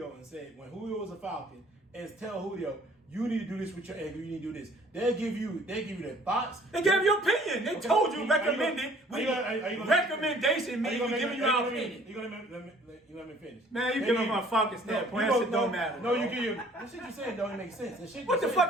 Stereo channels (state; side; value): normal; both; correlation 0.55